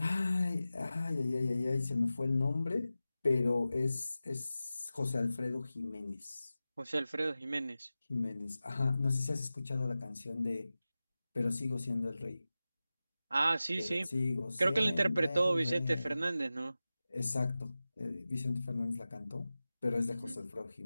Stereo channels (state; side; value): inverted; both; correlation -0.95